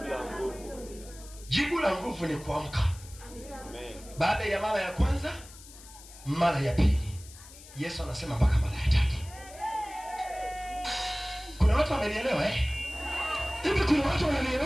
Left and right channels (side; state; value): left; noise; hiss, 19 dB below the sound